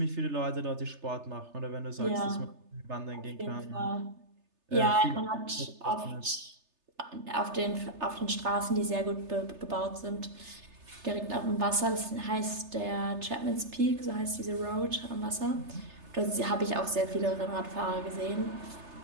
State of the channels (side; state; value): left; late; 3.3 ms